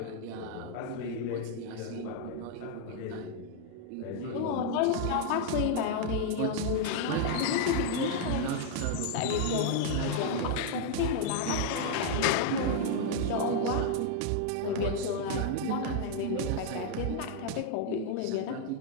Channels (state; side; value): different; both; correlation -0.01